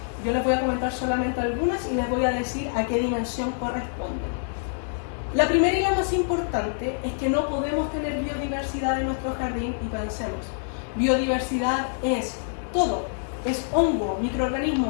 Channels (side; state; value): right; silent; digital silence